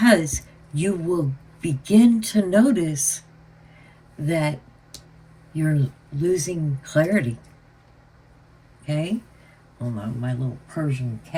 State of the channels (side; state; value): both; identical; correlation 1.00